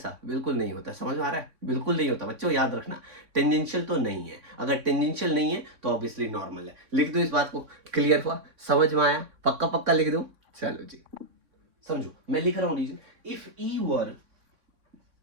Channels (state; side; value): late; left; 3.6 ms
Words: बिल्कुल नहीं होता, समझ में आ रहा है, बिल्कुल नहीं होता बच्चों, याद रखना टेंजेंशियल तो नहीं है। अगर टेंजेंशियल नहीं है तो ऑब्वियसली नॉर्मल है। लिख दो इस बात को, क्लियर हुआ, समझ में आया, पक्का पक्का लिख दो। चलो जी, समझो, मैं लिख रहा हूं reason, if E were